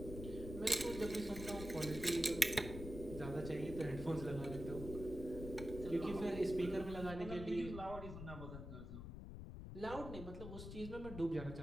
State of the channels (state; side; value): noise; left; rumble, 8 dB below the sound